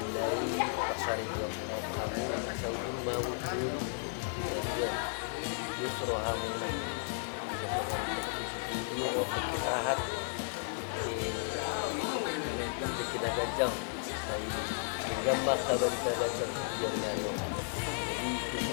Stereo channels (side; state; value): right; silent; 55 dB below the other